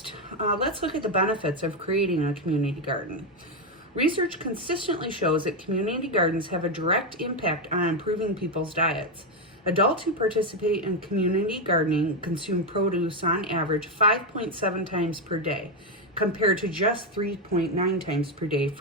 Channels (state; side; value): normal; both; correlation 0.06